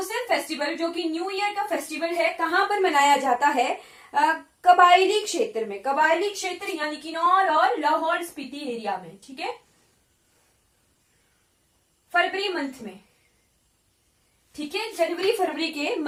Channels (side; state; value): both; identical; correlation 1.00